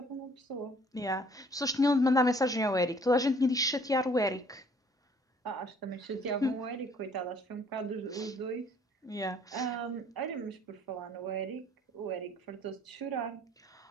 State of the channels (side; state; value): both; normal; correlation 0.58